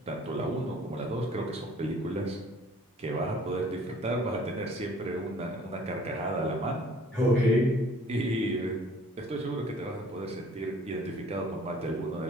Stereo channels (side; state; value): both; normal; correlation 0.55